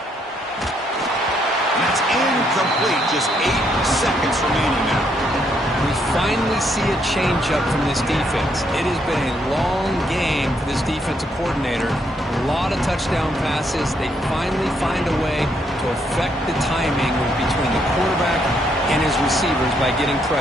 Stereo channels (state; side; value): normal; both; correlation 0.73